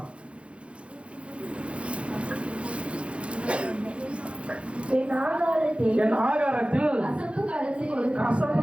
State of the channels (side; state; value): left; late; 0.060 ms